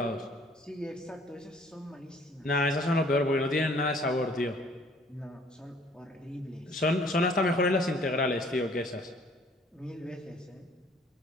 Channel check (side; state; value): both; normal; correlation 0.57